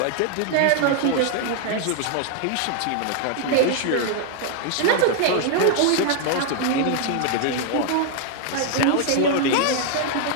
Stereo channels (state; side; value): different; both; correlation 0.00